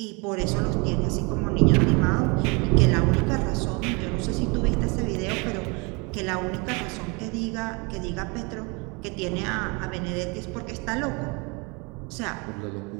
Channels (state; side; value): quieter; left; 29.7 dB